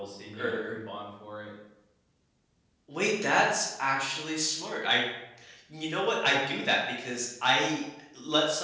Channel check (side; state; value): both; identical; correlation 1.00